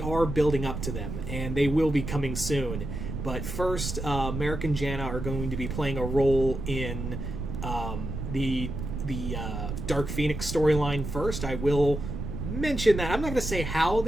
are building up to them, and they will be coming soon. But first, Merrick and Jana are going to be playing a role in the Dark Phoenix storyline first. I will mention that. I'm not going to say how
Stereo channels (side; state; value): right; noise; rumble, 5 dB below the sound